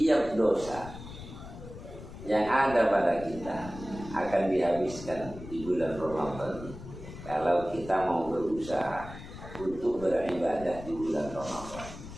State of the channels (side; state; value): left; noise; rumble, 13 dB below the sound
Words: dosa yang ada pada kita akan dihabiskan di bulan Ramadan kalau kita mau berusaha untuk beribadah di bulan Ramadan.